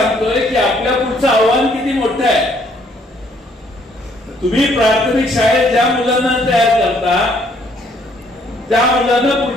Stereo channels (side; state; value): both; normal; correlation 0.66